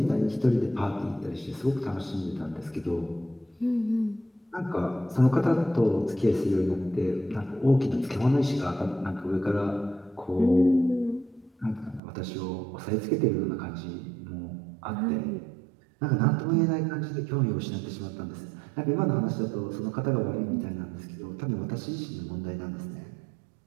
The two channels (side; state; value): left; drops out; at 12.0 s